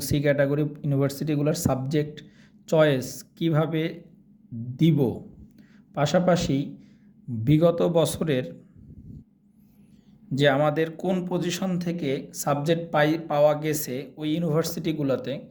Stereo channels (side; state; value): both; identical; correlation 1.00